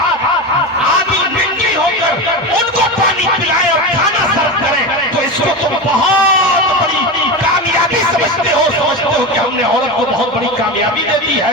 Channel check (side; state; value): both; normal; correlation 0.21